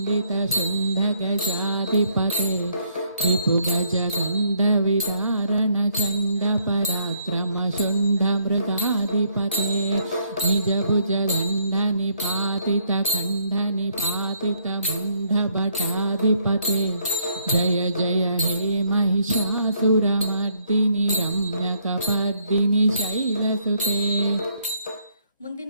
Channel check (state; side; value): inverted; both; correlation -0.70